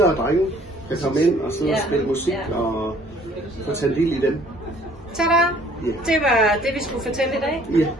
og drenge, der kom ind og sidde og spille musik og få tage del i dem. Tada! Det var det, vi skulle fortælle i dag.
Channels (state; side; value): normal; both; correlation 0.57